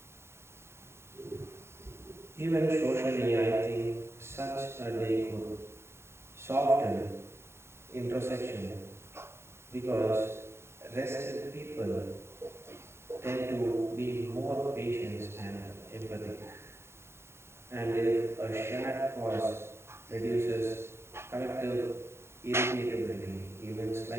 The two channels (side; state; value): left; late; 0.12 ms